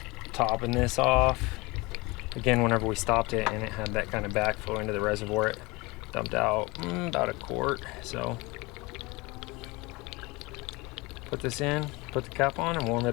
topping this off. Again, whenever we stopped it and it had that kind of backflow into the reservoir, it dumped out about a quart. So put this in, put the cap on and warm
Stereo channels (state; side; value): quieter; right; 24.2 dB